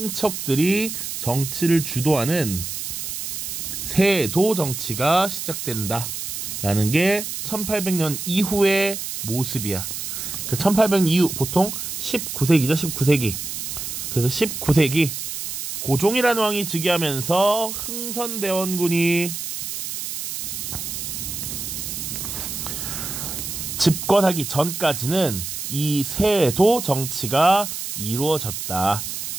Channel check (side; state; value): right; noise; hiss, 6 dB below the sound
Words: 정치를 주도하는 세도 정치가 시작된다라는 게 1800년 이후의 모습이야. 1800년 이후 보통 19세기죠. 19세기. 그래서 19세기 고종이라는 왕이 즉위하면서 흥선대원군이 집권하기 전까지는 이 세도 정치가 이루어졌다.